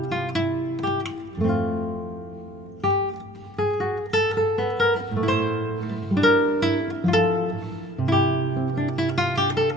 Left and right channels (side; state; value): both; normal; correlation 0.55